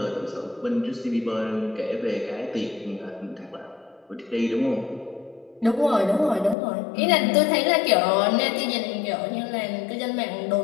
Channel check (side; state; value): right; drops out; at 6.6 s